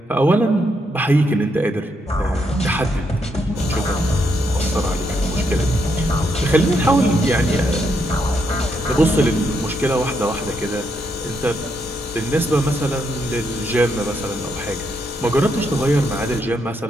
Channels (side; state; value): both; normal; correlation 0.78